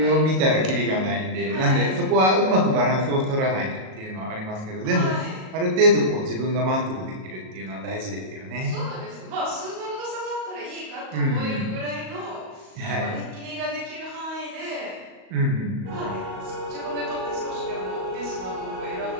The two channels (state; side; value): late; left; 38 ms